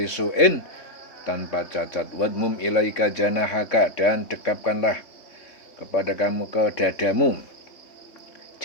su'in, tanpa cacat. Wadmum ilaika janahaka, dan dekapkanlah kepada kamu ke dadamu.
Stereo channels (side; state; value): right; late; 3.3 ms